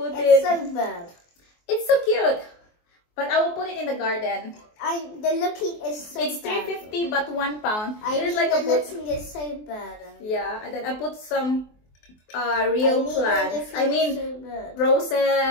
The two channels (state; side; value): late; right; 24 ms